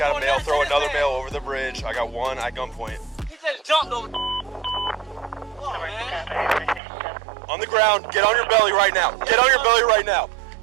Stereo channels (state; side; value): drops out; left; at 6.8 s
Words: got a male throw another male over the bridge. I got one at gunpoint. He just jumped over. On the ground. Get on your belly right now. Get on your belly right now.